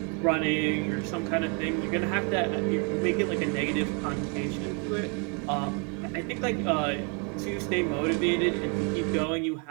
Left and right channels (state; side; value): quieter; left; 36.3 dB